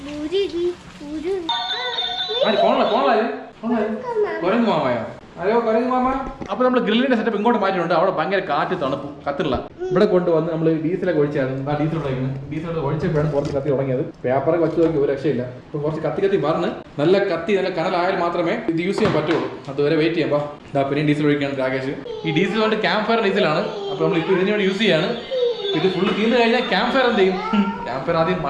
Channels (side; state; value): both; identical; correlation 1.00